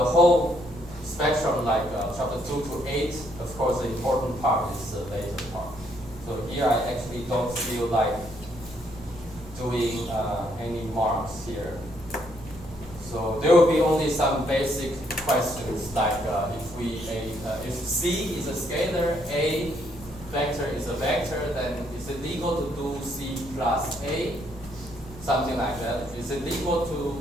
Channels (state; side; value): normal; both; correlation 0.71